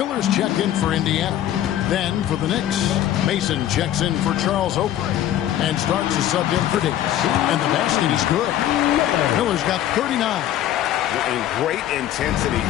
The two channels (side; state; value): right; quieter; 12.0 dB